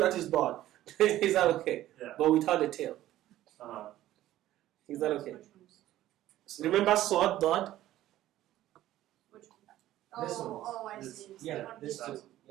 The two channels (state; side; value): quieter; left; 14.1 dB